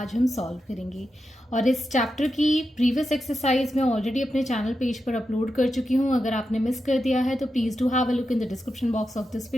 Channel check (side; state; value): both; normal; correlation 0.88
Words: हम सॉल्व करेंगे। और इस चैप्टर की प्रीवियस एक्सरसाइज मैं ऑलरेडी अपने चैनल पेज पर अपलोड कर चुकी हूँ। अगर आपने मिस कर दिया है तो please do have a look in the description box of this